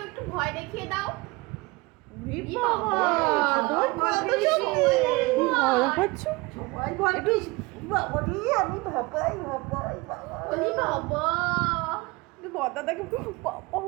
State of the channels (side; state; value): left; quieter; 24.0 dB